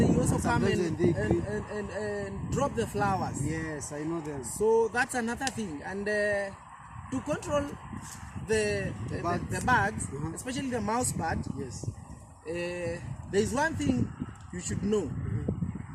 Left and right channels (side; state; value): both; identical; correlation 1.00